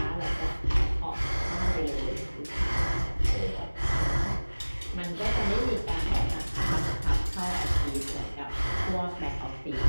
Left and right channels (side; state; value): both; inverted; correlation -1.00